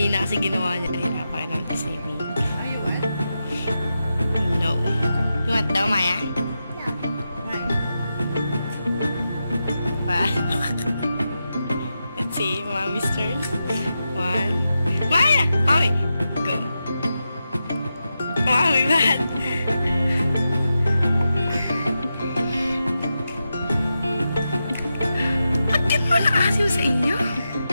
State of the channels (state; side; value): inverted; both; correlation -0.88